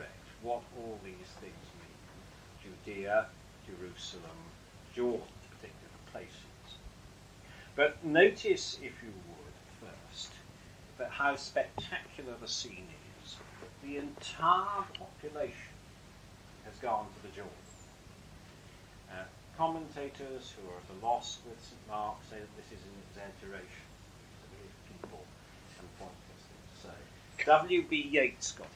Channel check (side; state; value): both; identical; correlation 1.00